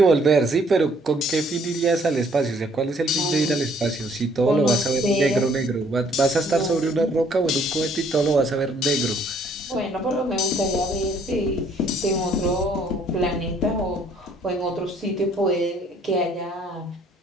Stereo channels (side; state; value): both; normal; correlation 0.63